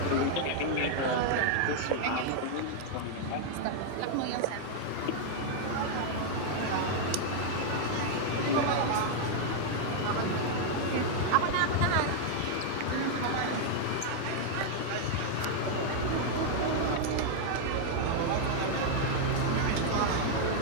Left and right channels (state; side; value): different; both; correlation 0.00